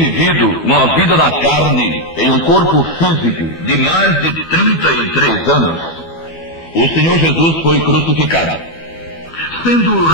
uma vida na carne, em um corpo físico de mais de 33 anos, o Senhor Jesus foi crucificado. Sendo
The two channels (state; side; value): late; right; 12 ms